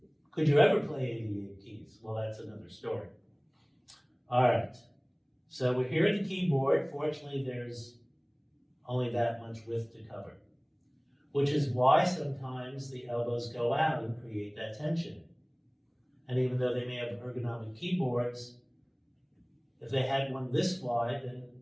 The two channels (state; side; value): identical; both; correlation 1.00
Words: Could you ever play 88 keys? Well, that's another story. All right. So we're here at the keyboard. Fortunately, there's only that much width to cover, which is why sometimes the elbows go out and create that tension. And even though they may have ergonomic keyboards, if they had one this wide, then